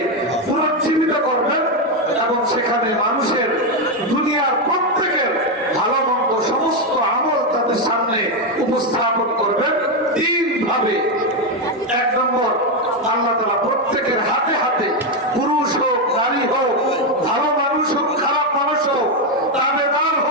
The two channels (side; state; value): both; normal; correlation 0.06